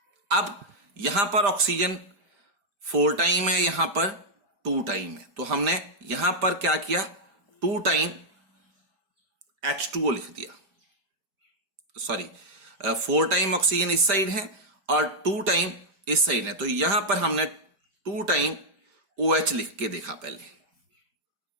अब यहां पर ऑक्सीजन 4 टाइम है, यहां पर 2 टाइम है, तो हमने यहां पर क्या किया? 2 टाइम H2O लिख दिया. सॉरी, 4 टाइम ऑक्सीजन इस साइड है और 2 टाइम इस साइड है, तो यहां पर हमने 2 टाइम OH लिख के देखा. पहले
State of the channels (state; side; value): late; left; 5.0 ms